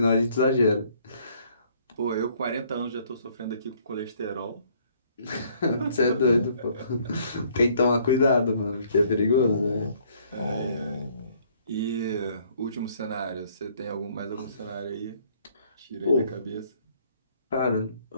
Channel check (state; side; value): inverted; both; correlation -0.63